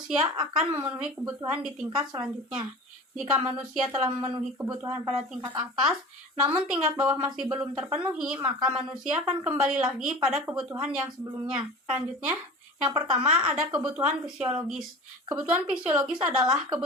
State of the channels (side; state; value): both; normal; correlation 0.36